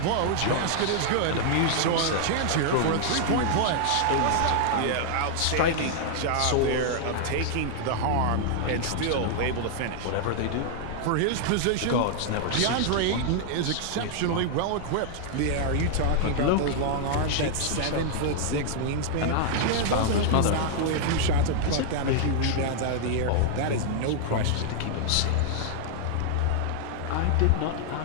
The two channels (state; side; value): different; both; correlation -0.01